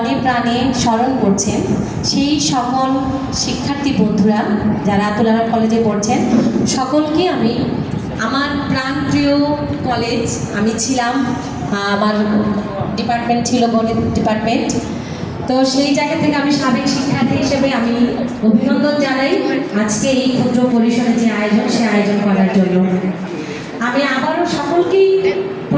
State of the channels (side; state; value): both; identical; correlation 1.00